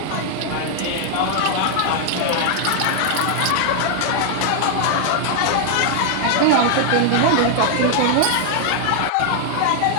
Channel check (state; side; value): different; both; correlation 0.00